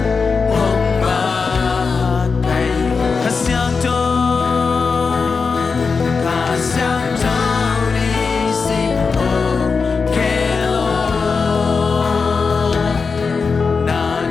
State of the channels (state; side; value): quieter; right; 4.9 dB